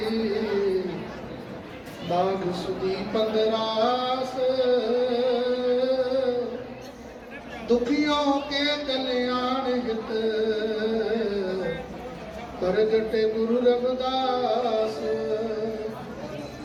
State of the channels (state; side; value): identical; both; correlation 1.00